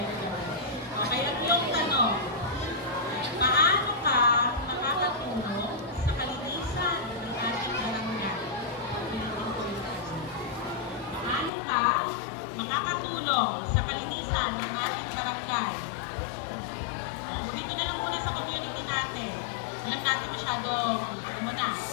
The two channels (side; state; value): right; drops out; at 11.5 s